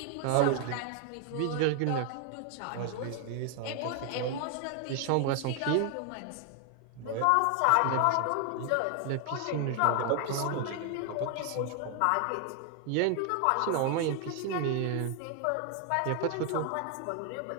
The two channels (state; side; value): different; both; correlation 0.00